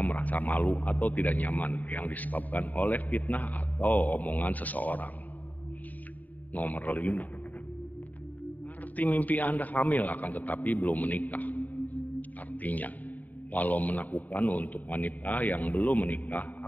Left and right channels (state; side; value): late; right; 0.079 ms